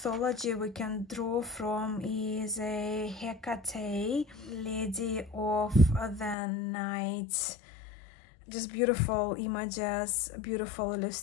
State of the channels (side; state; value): right; drops out; at 6.4 s